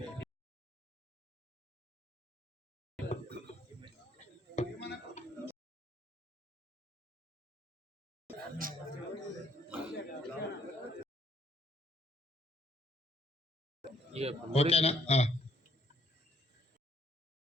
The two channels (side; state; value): both; normal; correlation 0.65